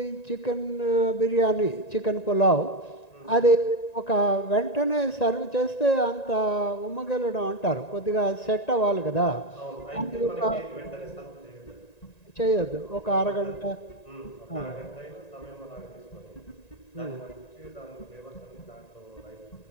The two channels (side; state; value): right; late; 1.9 ms